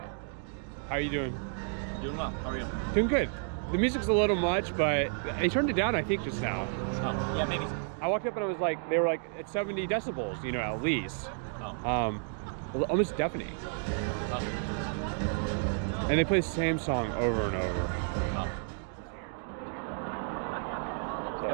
How are you doing? Doing well. How are you? Doing good. The music's a little much, but they turned it down, I think, just now. Oh, yeah, maybe. I walked up and I was like, they were like at 70 decibels, you know, at least. Oh. Almost deafening. Oh. And they play the same song over and over. Oh. So.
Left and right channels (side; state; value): left; silent; 57 dB below the other